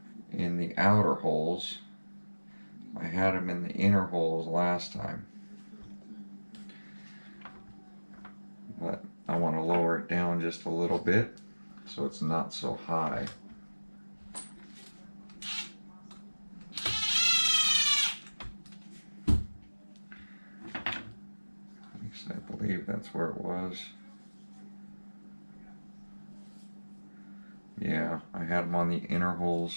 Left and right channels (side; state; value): both; inverted; correlation -1.00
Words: in the outer holes. I had them in the inner holes last time, but I want to lower it down just a little bit so it's not so high. I believe that's where it was. Yeah, I had them on the inner holes.